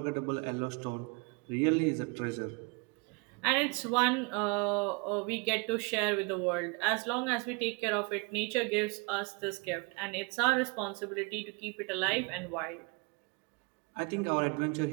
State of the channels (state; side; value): quieter; left; 31.3 dB